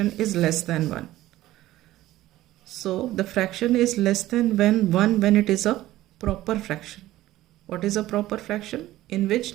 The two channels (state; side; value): quieter; left; 15.5 dB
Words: is less than 1? So, the fraction is less than 1 when it is a proper fraction. What is a proper fraction? In which